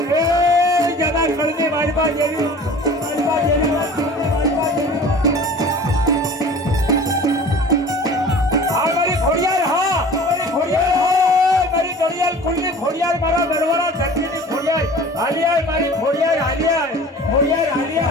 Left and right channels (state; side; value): normal; both; correlation 0.43